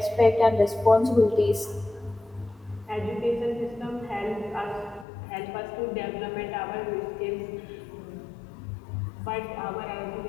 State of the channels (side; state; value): right; drops out; at 5.1 s